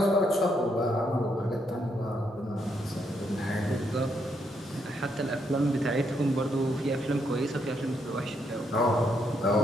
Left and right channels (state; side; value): normal; both; correlation 0.76